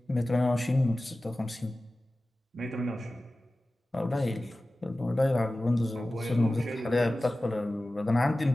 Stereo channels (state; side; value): normal; both; correlation 0.96